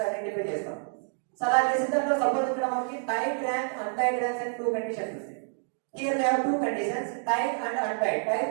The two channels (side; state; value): left; silent; digital silence